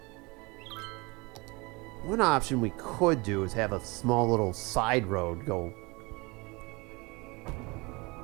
One option we could do is have a small little side road go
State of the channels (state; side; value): quieter; left; 26.2 dB